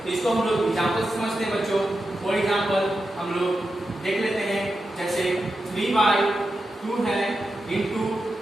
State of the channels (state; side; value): normal; both; correlation 0.89